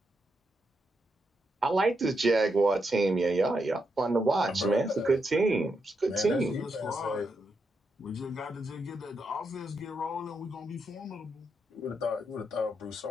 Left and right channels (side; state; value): both; normal; correlation 0.82